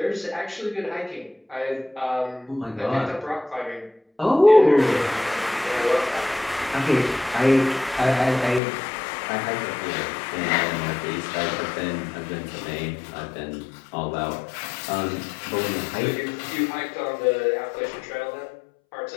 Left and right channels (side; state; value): right; drops out; at 8.6 s